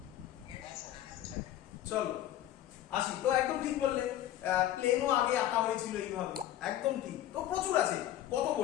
চলো আসি। তো একদম ঠিক বললে, প্লেনও আগে আঁকা হয়েছিল এইভাবে, একদম ঠিক। তো প্রচুর আছে, কত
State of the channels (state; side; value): quieter; right; 12.6 dB